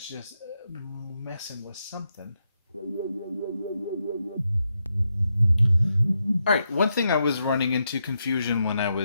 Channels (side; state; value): both; inverted; correlation -0.83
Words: just messing with something. All right, one thing I was running into confusion when I